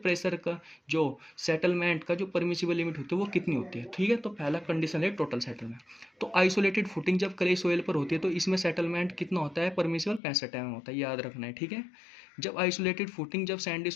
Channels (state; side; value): drops out; right; at 10.2 s